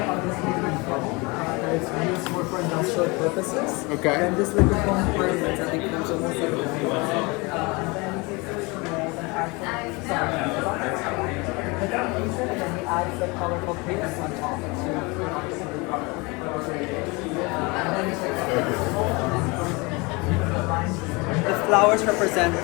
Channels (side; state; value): right; quieter; 26.6 dB